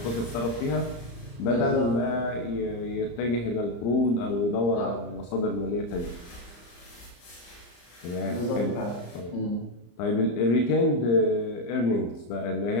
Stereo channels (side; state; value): right; late; 34 ms